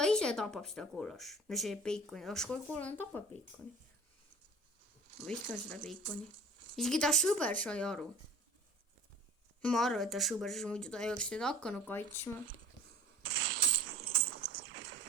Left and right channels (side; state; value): both; normal; correlation 0.44